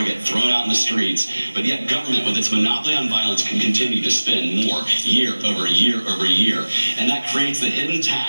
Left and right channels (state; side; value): inverted; both; correlation -1.00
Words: get thrown out in the streets. But yet government, with its monopoly on violence, can continue to spend more year over year over year. And that creates the hidden